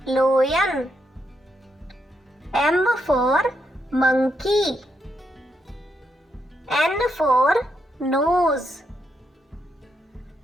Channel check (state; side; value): normal; both; correlation 0.80